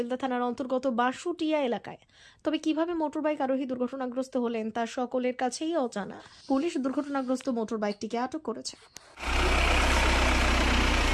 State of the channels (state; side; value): identical; both; correlation 1.00